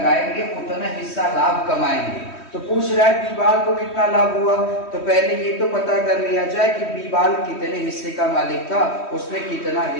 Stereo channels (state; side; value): late; right; 3.1 ms